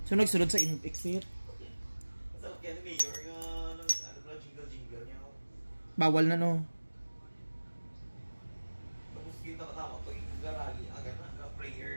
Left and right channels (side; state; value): both; inverted; correlation -1.00